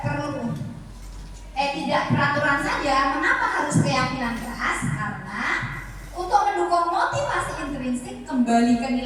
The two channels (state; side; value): identical; both; correlation 1.00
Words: tidak peraturan saja? Mengapa harus keyakinan kelas? Karena untuk mendukung motivasi intrinsik kembali ke